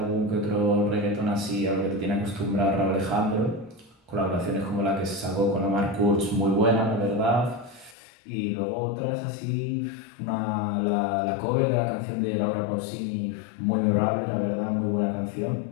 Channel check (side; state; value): right; drops out; at 8.0 s